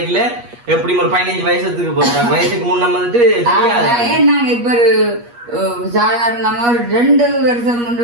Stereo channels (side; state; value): left; late; 8.4 ms